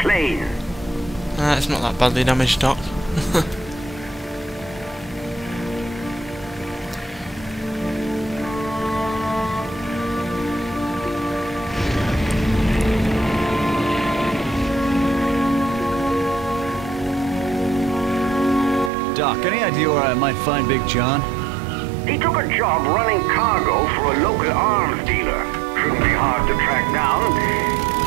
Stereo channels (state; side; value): drops out; left; at 18.9 s